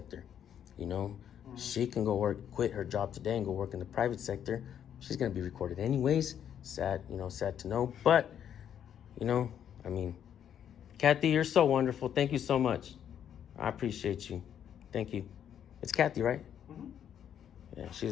She can quit her job today and go work in the private sector. She's gonna be recorded anyways. Sad to know. But, Kathy, you're so wonderful. Thank you so much. I appreciate you. Thank you. It's Kathy, right? Yeah,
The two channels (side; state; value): right; quieter; 9.3 dB